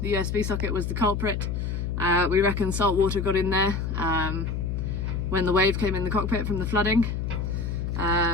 the USB socket was the culprit. We reckon salt water got in there when the wave came in the cockpit from the flooding,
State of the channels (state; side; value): noise; left; hum, 2 dB below the sound